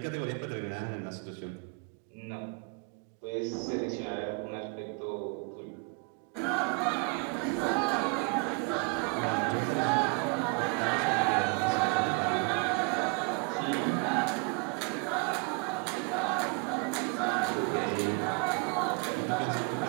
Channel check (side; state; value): left; quieter; 31.6 dB